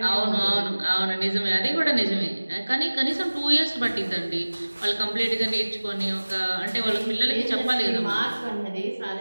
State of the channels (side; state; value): both; inverted; correlation -1.00